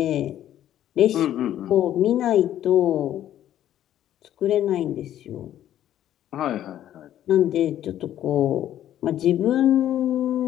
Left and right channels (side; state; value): right; quieter; 11.7 dB